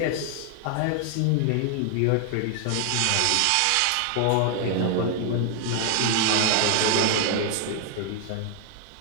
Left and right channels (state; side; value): different; both; correlation 0.00